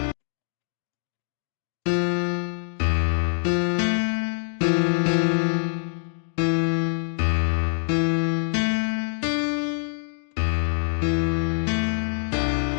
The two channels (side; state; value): right; silent; 62 dB below the other